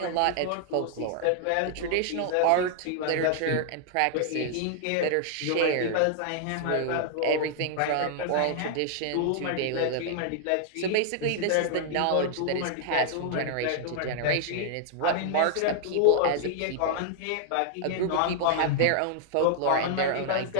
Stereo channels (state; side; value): different; both; correlation -0.01